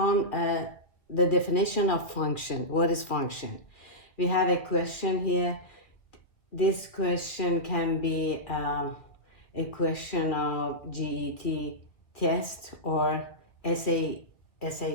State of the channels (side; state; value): right; late; 2.3 ms